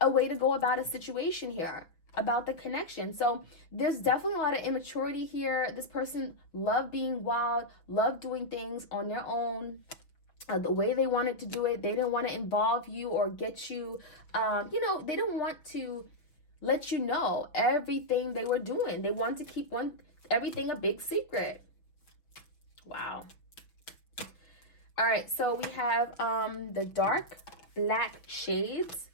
way to go about a situation here, about the connection. So there's definitely a lot of immaturity here. This person loved being wild, loved doing things on their own, the way they wanted to do it. They didn't want to involve you or get you, they didn't want to let you know everything they were doing. They wanted to keep everything a big secret. Wow. All right, so we have the dark black shades.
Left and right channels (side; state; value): right; late; 6.1 ms